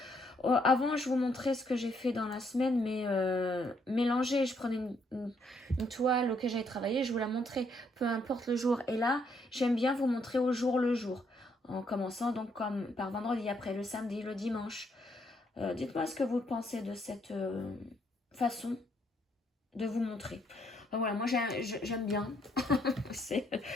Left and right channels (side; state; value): both; normal; correlation 0.72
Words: avant je vous montrais ce que j'ai fait dans la semaine, mais mélangé, je prenais une toile auquel j'avais travaillé, je vous la montrais, peu importe le jour. Et là, j'aime bien vous montrer au jour le jour, en commençant donc comme par vendredi, après le samedi, le dimanche. Dites-moi ce que vous pensez de cette façon de vous montrer. Voilà, moi j'aime bien.